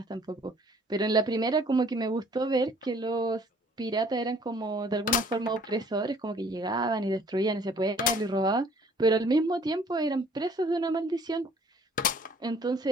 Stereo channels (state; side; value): normal; both; correlation 0.56